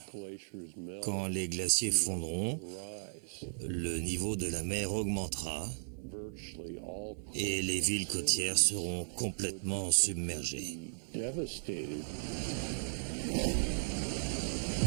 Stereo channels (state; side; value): silent; left; digital silence